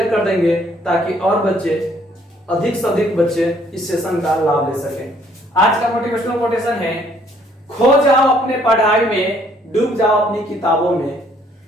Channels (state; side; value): normal; both; correlation 0.63